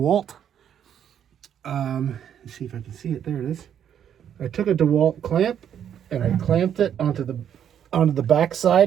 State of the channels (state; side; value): quieter; left; 9.2 dB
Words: Let's see if I can see it. There it is. I took a DeWalt clamp and I clamped it onto the back